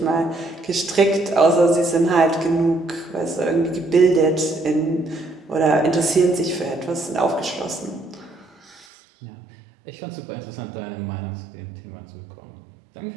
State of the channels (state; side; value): drops out; left; at 8.8 s